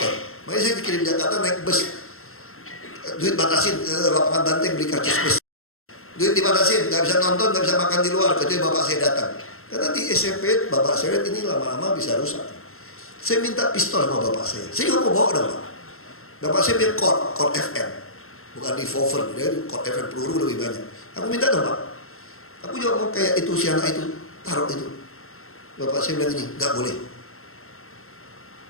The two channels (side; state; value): right; late; 0.62 ms